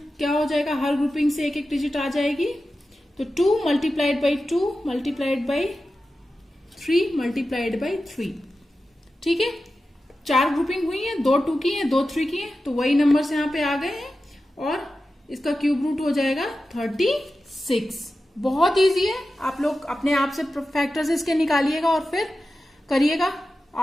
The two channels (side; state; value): both; normal; correlation 0.93